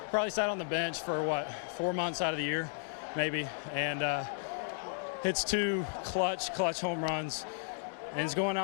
Probably sat on the bench for what, 4 months out of the year, maybe, and hits 2 clutch home runs, and he's going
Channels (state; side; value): silent; right; digital silence